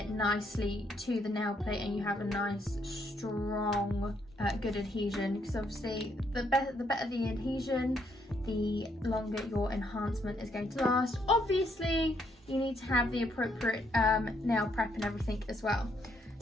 nicely to the nail plate and you have a nice strong good adhesion, because obviously the better the adhesion, the longer your enhancement is going to last. Obviously you need to have the appropriate nail prep and everything as well.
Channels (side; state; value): both; normal; correlation 0.73